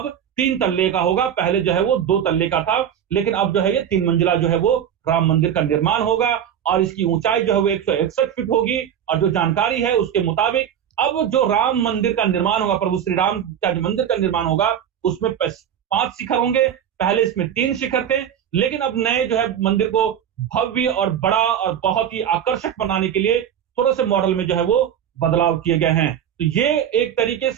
3 तल्ले का होगा। पहले जो है वो 2 तल्ले का था, लेकिन अब जो है ये 3 मंजिला जो है वो राम मंदिर का निर्माण होगा। और इसकी ऊंचाई जो है वो 161 फीट होगी। और जो जानकारी है उसके मुताबिक अब जो राम मंदिर का निर्माण होगा, प्रभु श्री राम का जो मंदिर का निर्माण होगा, उसमें 5 शिखर होंगे। पहले इसमें 3 शिखर थे, लेकिन अब नए जो है मंदिर को भव्य और बड़ा और बहुत ही आकर्षक बनाने के लिए थोड़े से मॉडल में जो है वो बदलाव किए गए हैं। तो ये एक तरीके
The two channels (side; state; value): left; quieter; 9.4 dB